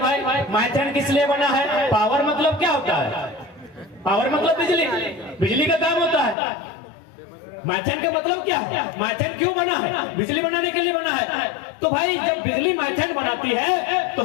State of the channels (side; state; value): right; drops out; at 6.4 s